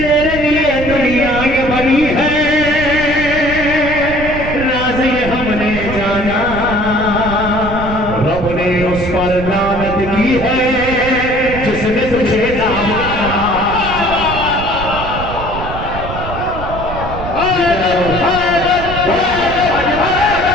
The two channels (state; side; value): noise; right; rumble, 8 dB below the sound